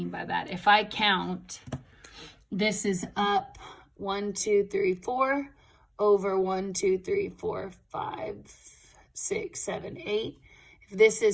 by that. If I count, this is up 1, 2, 3, 4 over 1, 2, 3, 4, 5, 6, 7, 8. If this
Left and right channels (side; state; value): both; identical; correlation 1.00